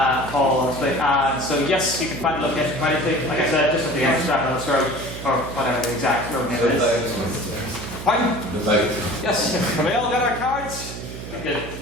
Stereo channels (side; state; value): right; noise; hum, 10 dB below the sound